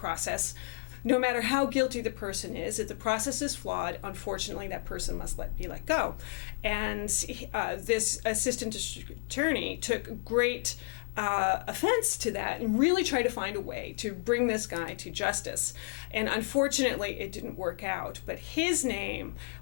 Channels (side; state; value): right; quieter; 33.6 dB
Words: no matter how guilty the person is, if the process is flawed, unfortunately, that person must be let go. And this assistant district attorney took great offense to that and really tried to find a way to bring this guy to justice. And unfortunately, it didn't work out. But his name